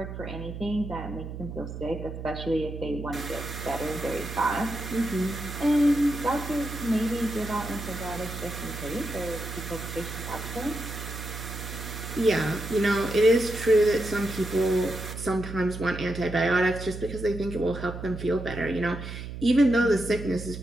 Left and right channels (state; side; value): noise; right; hum, 8 dB below the sound